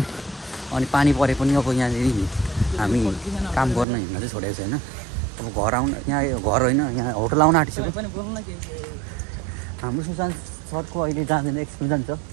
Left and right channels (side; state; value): left; drops out; at 3.9 s